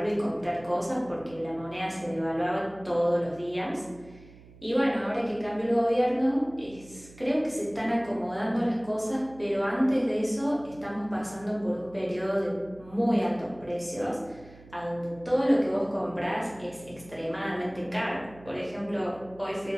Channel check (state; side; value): noise; right; hum, 21 dB below the sound